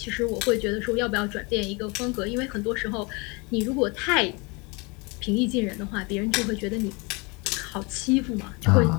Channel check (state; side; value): quieter; right; 28.8 dB